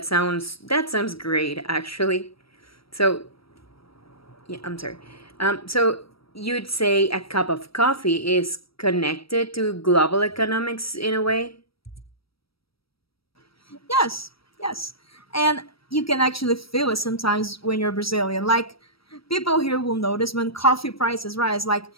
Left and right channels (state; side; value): late; right; 0.75 ms